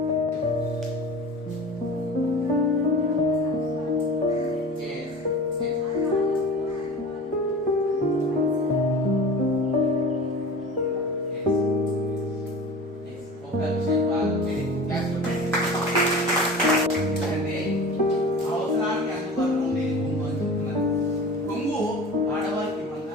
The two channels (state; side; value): normal; both; correlation 0.37